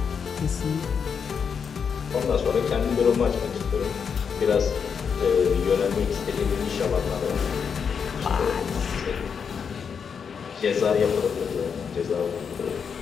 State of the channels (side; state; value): right; quieter; 6.6 dB